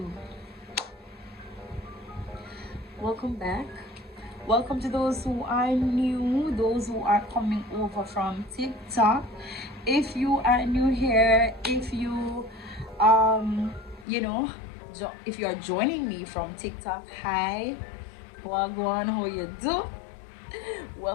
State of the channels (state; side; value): drops out; right; at 14.1 s